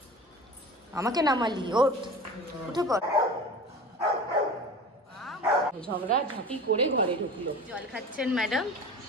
আমাকে নামালি, উঠে পড়। ঝগড়া ঝাঁটি করে ঘরে ঢুকলো। জল খাচ্ছেন ম্যাডাম?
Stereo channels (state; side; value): normal; both; correlation 0.36